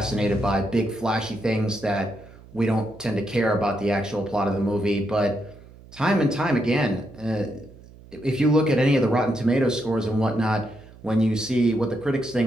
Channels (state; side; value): noise; right; hum, 21 dB below the sound